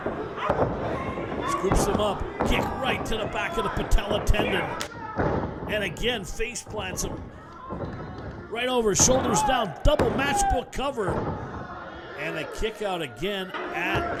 Scoops him up, kick right to the back of the patella tendon. And again, face plants him. Right over, shoulders down, double matchbook cover. And a kick out again at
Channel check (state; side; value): identical; both; correlation 1.00